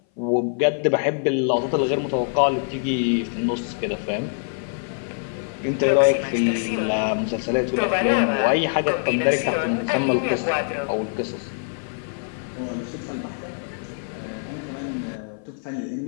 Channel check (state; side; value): silent; right; 58 dB below the other